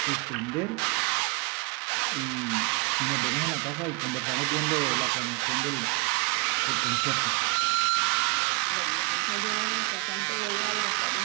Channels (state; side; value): quieter; left; 29.4 dB